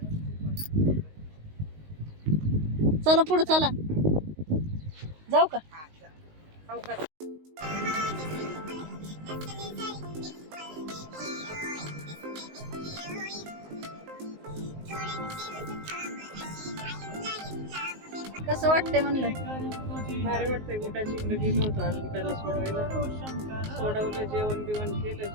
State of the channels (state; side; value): late; left; 19 ms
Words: चला पुढे चला. जाऊ का. कसं वाटतंय म्हणलं. भारी वाटतंय. गुड्डाची इकडे गेलो होतो आज गुड्डाला सोडवायला. सोडवलं जेवण बिवण केलं.